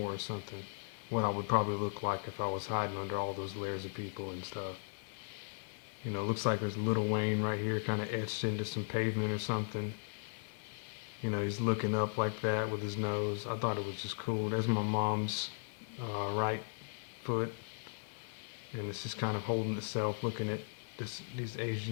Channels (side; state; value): right; silent; 53 dB below the other